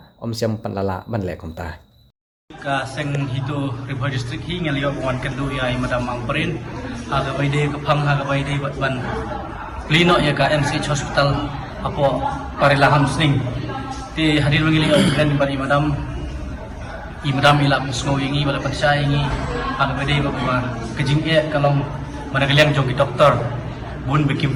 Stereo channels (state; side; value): identical; both; correlation 1.00